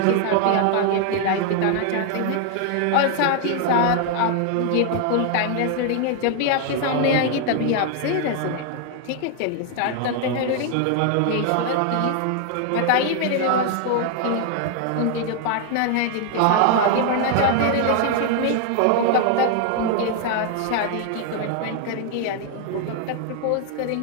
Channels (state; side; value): different; both; correlation 0.00